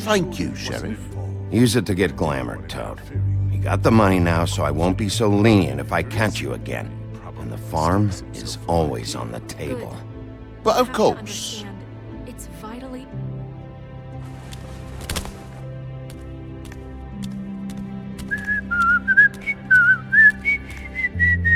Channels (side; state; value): both; identical; correlation 1.00